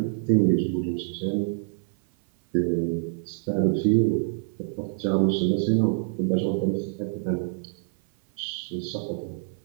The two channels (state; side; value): silent; left; 56 dB below the other